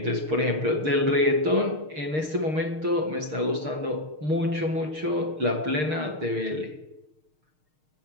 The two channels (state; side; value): late; left; 6.5 ms